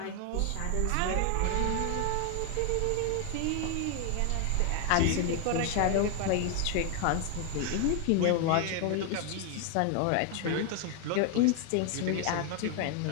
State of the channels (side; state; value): both; different; correlation 0.00